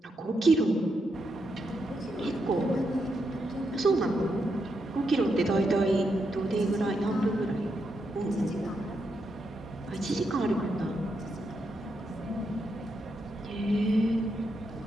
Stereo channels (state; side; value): normal; both; correlation 0.82